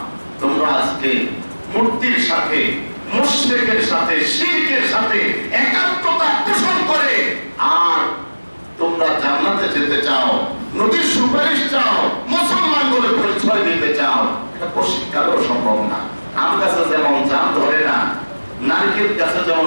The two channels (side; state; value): both; inverted; correlation -1.00